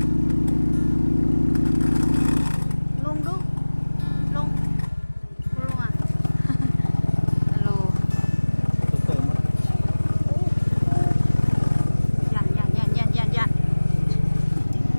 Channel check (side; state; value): both; inverted; correlation -1.00